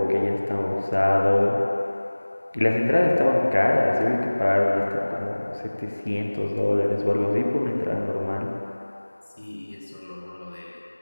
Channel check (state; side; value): inverted; both; correlation -1.00